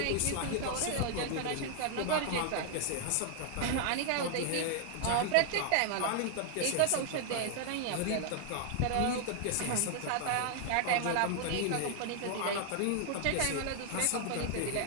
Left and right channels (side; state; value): both; different; correlation 0.00